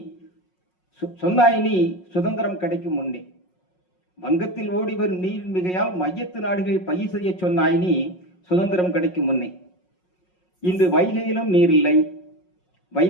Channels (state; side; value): late; right; 5.5 ms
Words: சொன்னாய் நீ சுதந்திரம் கிடைக்கும் முன்னே. வங்கத்தில் ஓடி வரும் நீரின் மிகையால் மையத்து நாடுகள் பயிர் செய்ய சொன்னாய் நீ சுதந்திரம் கிடைக்கும் முன்னே. இன்று வைகையிலும் நீரில்லை,